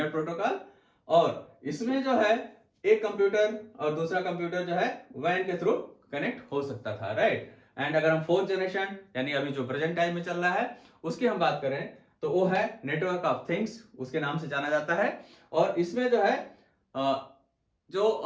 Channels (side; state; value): both; identical; correlation 1.00